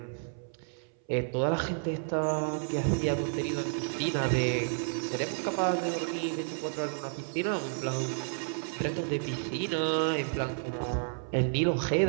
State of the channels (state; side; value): silent; left; 57 dB below the other